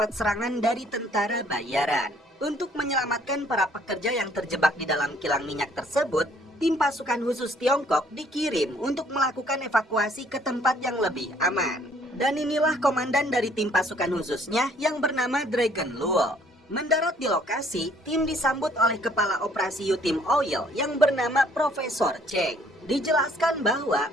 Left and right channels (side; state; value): both; normal; correlation 0.61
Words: serangan dari tentara bayaran. Untuk menyelamatkan para pekerja yang terjebak di dalam kilang minyak tersebut, tim pasukan khusus Tiongkok dikirim untuk melakukan evakuasi ke tempat yang lebih aman. Dan inilah komandan dari tim pasukan khususnya yang bernama Dragon Luo. Mendarat di lokasi, tim disambut oleh kepala operasi Yutim Oil yang bernama Profesor Cheng. Dijelaskan bahwa